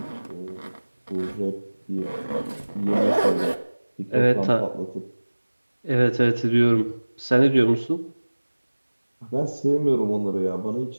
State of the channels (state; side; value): inverted; both; correlation -1.00